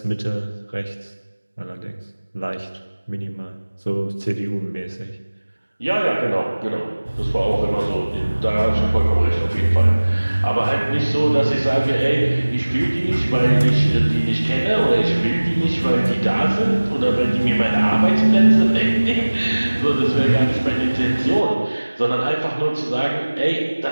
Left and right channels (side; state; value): both; inverted; correlation -1.00